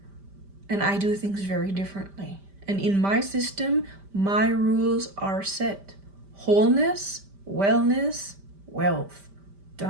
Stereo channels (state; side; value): late; left; 5.1 ms